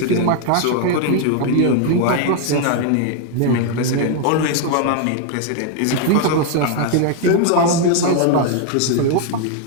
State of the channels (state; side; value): different; both; correlation 0.00